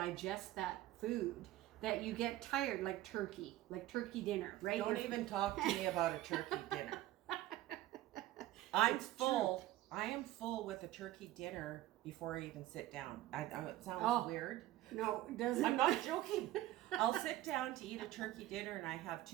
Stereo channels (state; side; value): quieter; left; 15.4 dB